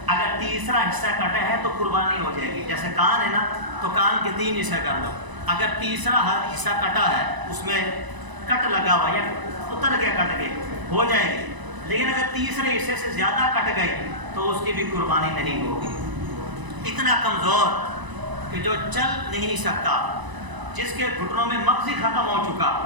اگر تیسرا حصہ کٹا ہے تو قربانی ہو جائے گی۔ جیسے کان ہے نا، تو کان کے 3 حصے کر لو، اگر تیسرا حصہ کٹا ہے، اس میں کٹ لگا ہوا یا اتر گیا، کٹ گئے، ہو جائے گی۔ لیکن اگر تیسرے حصے سے زیادہ کٹ گئی تو اس کی بھی قربانی نہیں ہوگی۔ اتنا کمزور کہ جو چل نہیں سکتا، جس کے گھٹنوں میں مغزی ختم ہو چکا،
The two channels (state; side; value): late; left; 1.0 ms